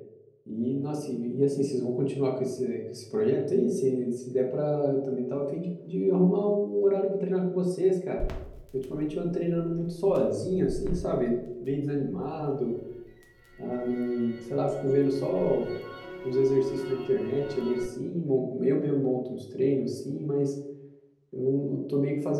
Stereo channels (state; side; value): identical; both; correlation 1.00